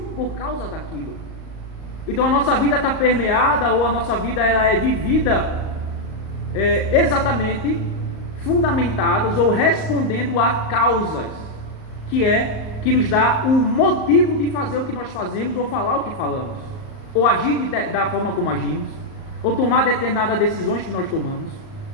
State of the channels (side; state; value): right; late; 38 ms